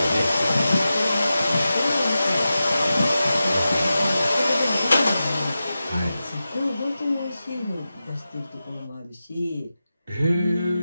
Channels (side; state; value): both; inverted; correlation -0.93